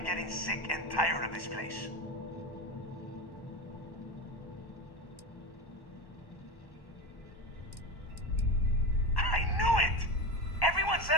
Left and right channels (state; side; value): late; right; 1.1 ms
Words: getting sick and tired of this place. I knew it! Everyone said